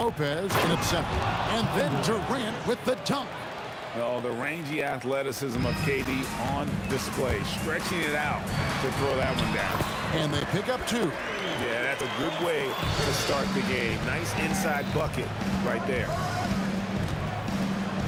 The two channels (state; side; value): identical; both; correlation 1.00